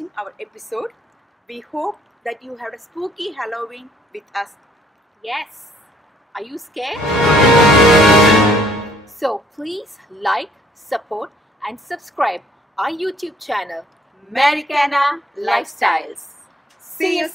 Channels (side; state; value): both; normal; correlation 0.62